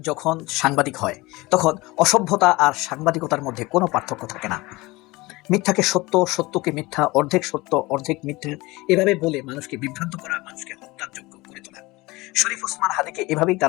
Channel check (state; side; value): quieter; right; 21.8 dB